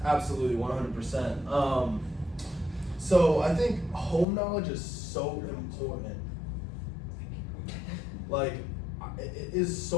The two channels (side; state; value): right; drops out; at 4.2 s